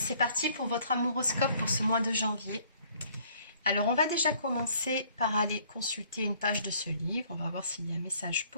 parti pour votre amouroscope pour ce mois de janvier. Alors, on va déjà commencer par aller consulter une page de ce livre. On va voir s'il y a un message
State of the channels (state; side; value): inverted; both; correlation -0.60